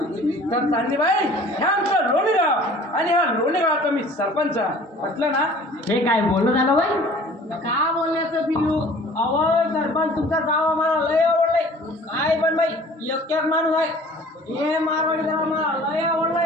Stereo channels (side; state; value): both; normal; correlation 0.49